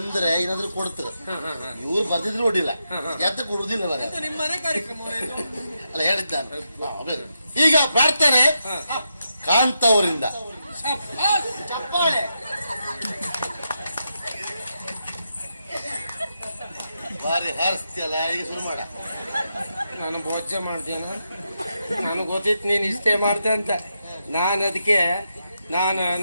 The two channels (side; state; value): both; inverted; correlation -0.85